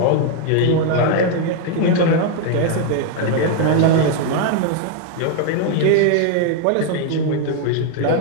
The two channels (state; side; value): different; both; correlation 0.01